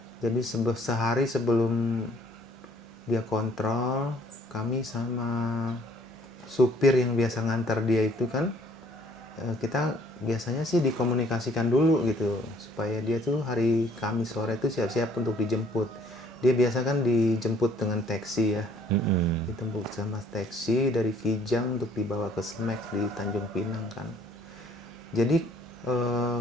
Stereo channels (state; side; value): normal; both; correlation 0.60